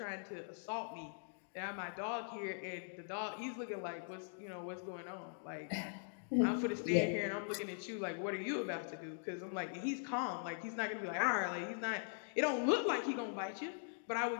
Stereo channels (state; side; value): silent; right; digital silence